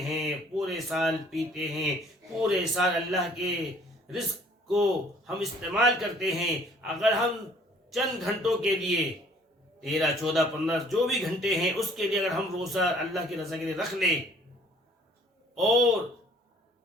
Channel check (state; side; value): normal; both; correlation 0.57